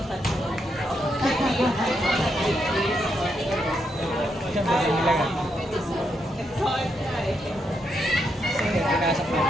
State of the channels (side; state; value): both; normal; correlation 0.80